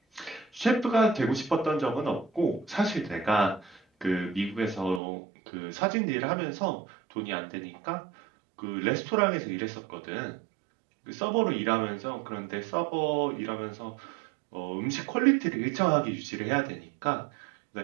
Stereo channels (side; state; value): left; drops out; at 5.0 s